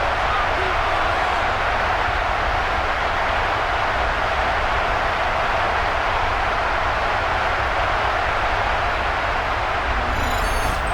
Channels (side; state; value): both; identical; correlation 1.00